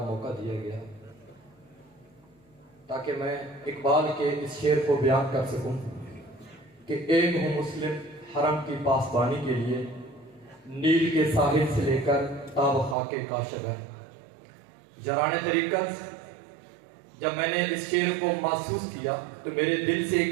موقع دیا گیا تاکہ میں اقبال کے اس شعر کو بیان کر سکوں کہ ایک ہوں مسلم حرم کی پاسبانی کے لیے، نیل کے ساحل سے لے کر تاب خاک کاشغر. جران طریقت جب میں نے اس شعر کو محسوس کیا تو میرے دل سے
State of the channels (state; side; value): drops out; left; at 13.0 s